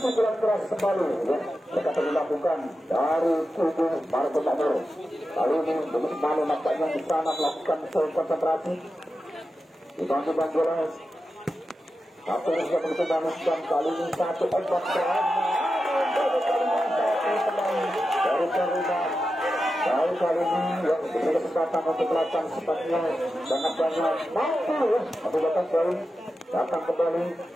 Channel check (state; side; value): normal; both; correlation 0.91